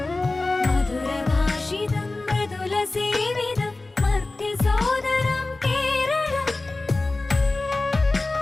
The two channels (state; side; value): quieter; right; 3.2 dB